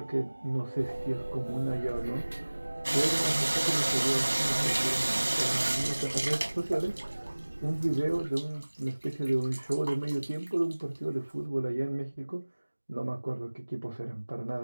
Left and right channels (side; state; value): both; inverted; correlation -1.00